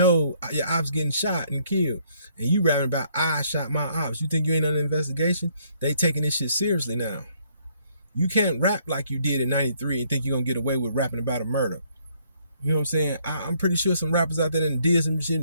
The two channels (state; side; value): inverted; both; correlation -0.67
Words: your op's getting shot and killed. And you rapping about, I shot my ops. You think you ain't under investigation? They taking this shit seriously now. You can't rap like you did in 93 and think you're going to get away with rapping about a murder. You know what I'm saying? I'm pretty sure some rappers out there that did some